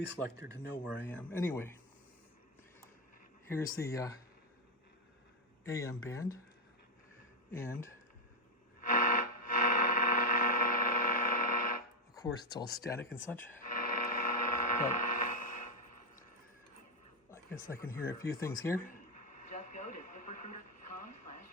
to know where I am. Anyway, here's the AM band, and of course it's all static and such, but I guess I can hear a few things here. Just go to ziprecruiter.com/.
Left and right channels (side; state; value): both; normal; correlation 0.03